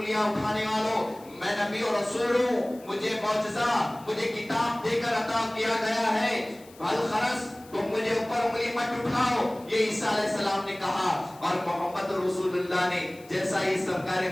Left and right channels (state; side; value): noise; left; hiss, 24 dB below the sound